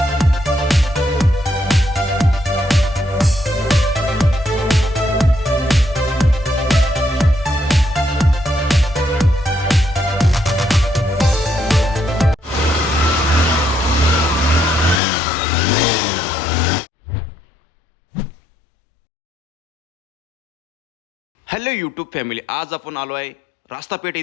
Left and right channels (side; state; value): right; drops out; at 15.0 s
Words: Hello YouTube family, आज आपण आलो आहे रास्तापेठ